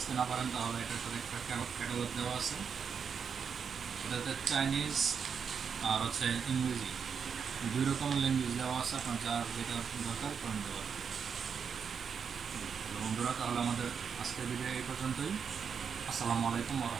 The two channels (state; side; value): quieter; left; 6.6 dB